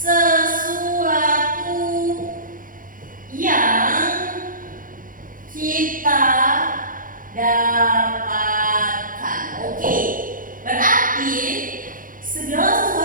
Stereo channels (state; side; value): late; left; 0.40 ms